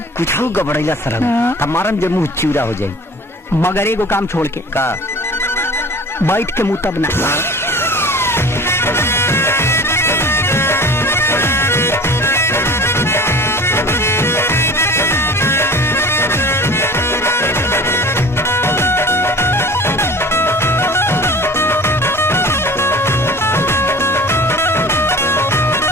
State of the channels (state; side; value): normal; both; correlation 0.42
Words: कुछ गबड़ैला सर हमारा जब मुंह चिवड़ा हो जाये। मगर एगो काम छोड़ के का बैठ के मुँह तब ना